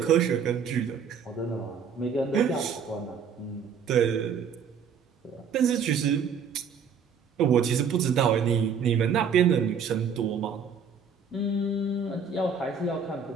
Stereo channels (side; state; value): left; quieter; 6.3 dB